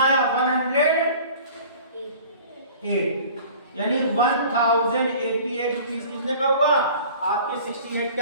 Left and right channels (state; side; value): inverted; both; correlation -0.46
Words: आया 108, यानी 1088 रुपीस कितने का हुआ आपके 68